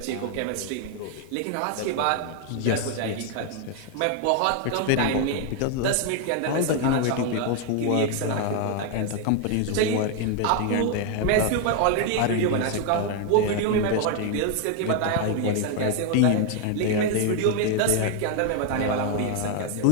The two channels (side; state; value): both; different; correlation 0.01